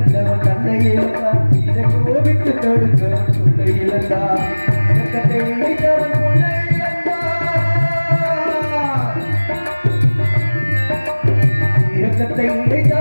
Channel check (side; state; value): both; inverted; correlation -1.00